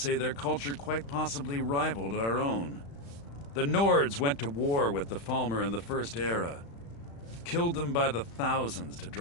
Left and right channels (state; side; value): late; right; 35 ms